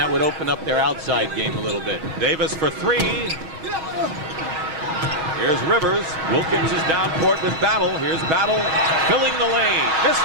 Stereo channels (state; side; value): late; left; 6.3 ms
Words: would open up their outside game a little bit. Davis for 3. Here's Rivers. Wilkins is down court with Battle. Here's Battle filling the lane. Missed